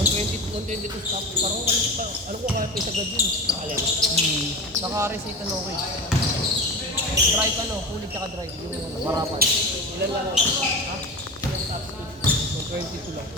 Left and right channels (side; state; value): both; normal; correlation 0.28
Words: to stop. Parang alam ko kaya pa isagad yun. Alin? Naka-receipt ano ko eh. Drive ano, kulit tsaka drive. Yung marapan. Ilan lang ako? Ha? Ilan stop speed? 122 lang.